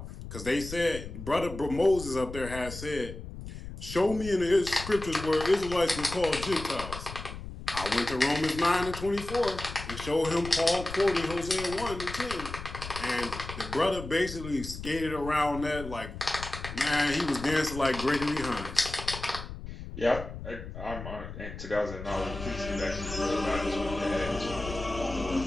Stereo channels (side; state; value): left; noise; rumble, 10 dB below the sound